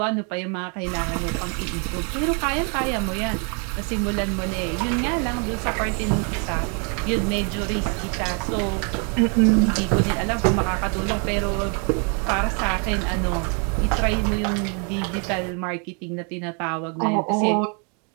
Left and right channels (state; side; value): quieter; left; 37.4 dB